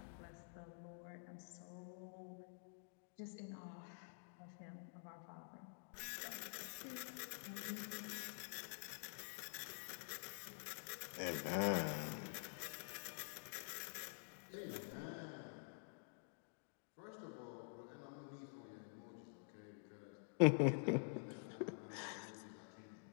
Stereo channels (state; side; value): silent; right; digital silence